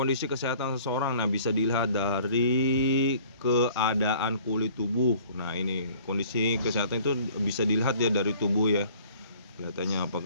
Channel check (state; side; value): inverted; both; correlation -0.53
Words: kesehatan seseorang, nah bisa dilihat dari keadaan kulit tubuh. Nah ini kondisi kesehatan itu bisa dilihat ya dari tubuh, ya, kelihatannya